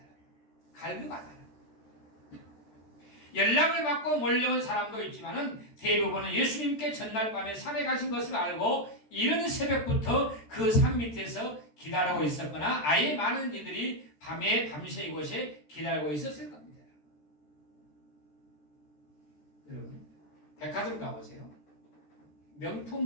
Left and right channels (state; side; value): late; right; 13 ms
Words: 갈급하다는. 연락을 받고 몰려온 사람도 있지만은 대부분은 예수님께 전날 밤에 산에 가신 것을 알고 이른 새벽부터 그 산 밑에서 기다리고 있었거나 아예 많은 이들이 밤새 이곳에 기다리고 있었을 겁니다. 여러분, 백화점 가보세요.